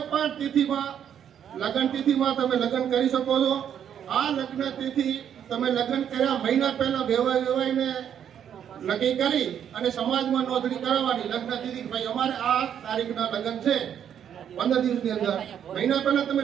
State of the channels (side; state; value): left; quieter; 9.1 dB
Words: પણ તિથિમાં લગ્ન તિથિમાં તમે લગ્ન કરી શકો છો. આ લગ્ન તિથિ તમે લગ્ન કર્યા મહિના પહેલા વેવાઈને નક્કી કરી અને સમાજમાં નોંધણી કરાવવાની. લગ્ન તિથિ ભાઈ અમારે આ તારીખના લગ્ન છે 15 દિવસની અંદર. મહિના પહેલા તમે